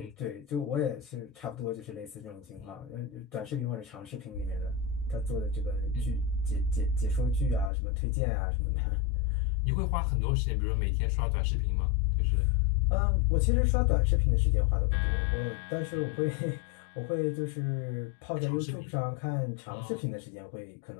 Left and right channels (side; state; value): right; drops out; at 7.7 s